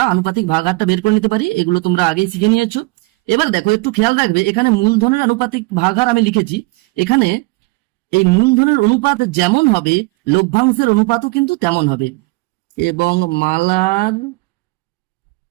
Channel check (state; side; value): quieter; left; 25.1 dB